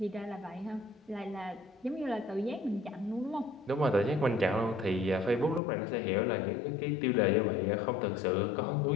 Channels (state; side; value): drops out; right; at 5.6 s